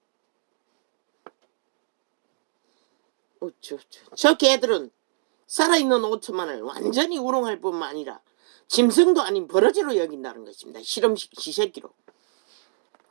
저 개들은 살아있는 5천만을 완전히 우롱할 뿐만 아니라 짐승도 아닌 버러지로 여긴다는 것입니다. 실험식 지새끼로.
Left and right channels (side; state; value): left; silent; digital silence